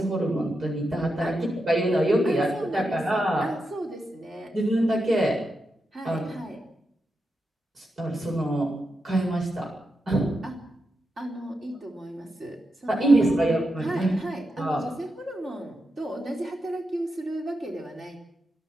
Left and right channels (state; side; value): normal; both; correlation 0.87